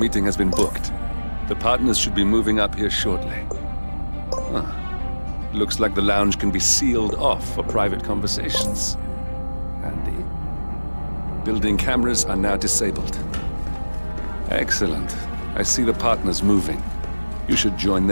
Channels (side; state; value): both; inverted; correlation -1.00